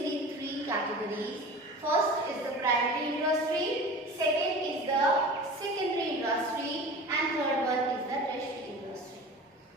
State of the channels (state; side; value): normal; both; correlation 0.37